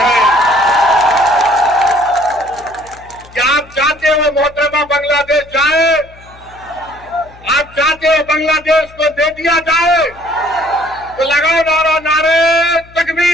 क्या आप चाहते हो मोहतरमा बांग्लादेश जाए? आप चाहते हो बांग्लादेश को दे दिया जाए? तो लगाओ नारा, नारे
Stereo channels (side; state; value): left; noise; hum, 24 dB below the sound